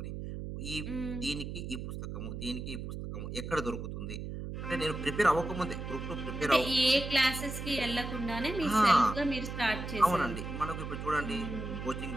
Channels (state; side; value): noise; right; hum, 6 dB below the sound